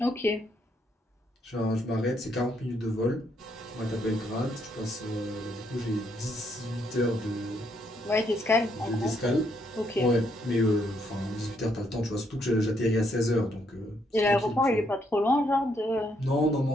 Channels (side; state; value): both; normal; correlation 0.73